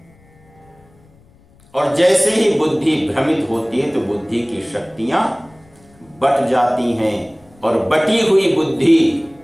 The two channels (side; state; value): left; noise; rumble, 29 dB below the sound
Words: और जैसे ही बुद्धि भ्रमित होती है तो बुद्धि की शक्तियां बट जाती हैं। और बटी हुई बुद्धि